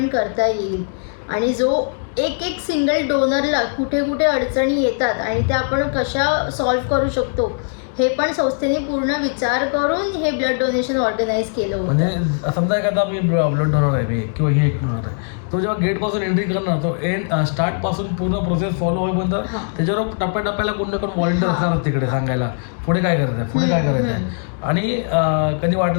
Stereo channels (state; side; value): silent; right; 66 dB below the other